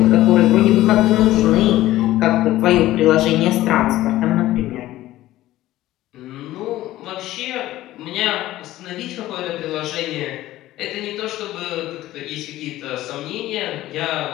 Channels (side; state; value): right; quieter; 15.5 dB